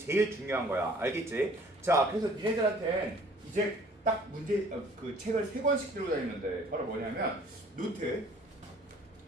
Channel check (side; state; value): both; normal; correlation 0.54